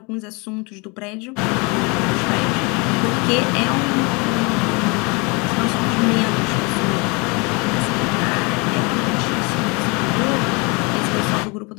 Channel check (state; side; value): quieter; right; 29.3 dB